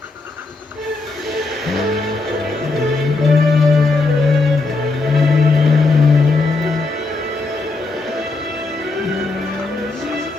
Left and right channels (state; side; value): quieter; right; 3.5 dB